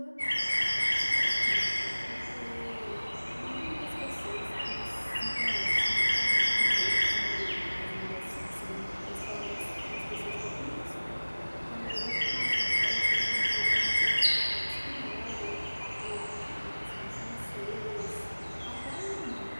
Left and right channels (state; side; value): inverted; both; correlation -1.00